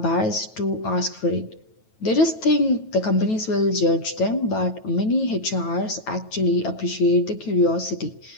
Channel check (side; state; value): right; late; 9.2 ms